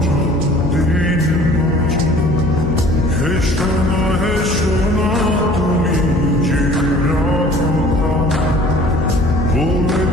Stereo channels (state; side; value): noise; left; hum, 6 dB below the sound